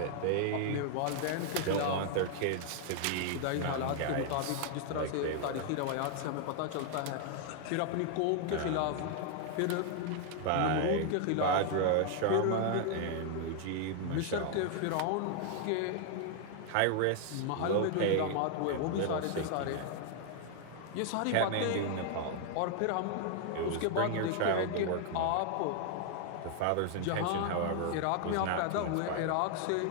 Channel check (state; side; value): different; both; correlation 0.00